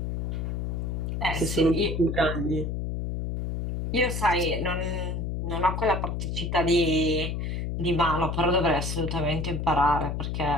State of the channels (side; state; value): left; noise; hum, 2 dB below the sound